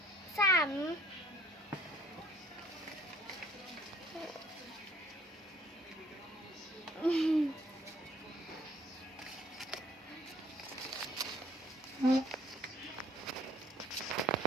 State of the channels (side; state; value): both; normal; correlation 0.58